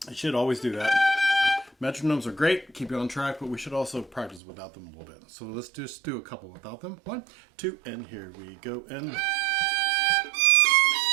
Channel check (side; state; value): left; drops out; at 4.4 s